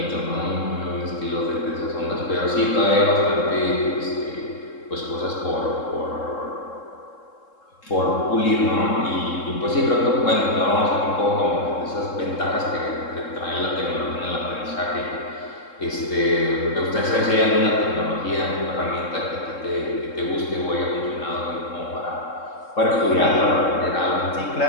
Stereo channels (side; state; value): right; late; 3.7 ms